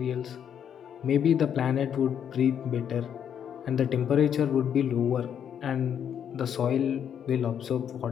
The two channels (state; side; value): quieter; right; 8.7 dB